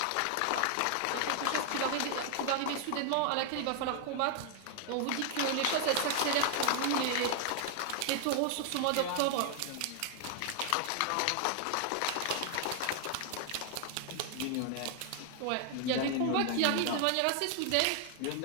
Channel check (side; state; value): both; different; correlation 0.00